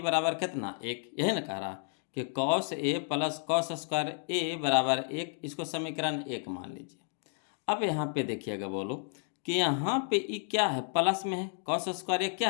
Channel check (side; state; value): right; silent; 57 dB below the other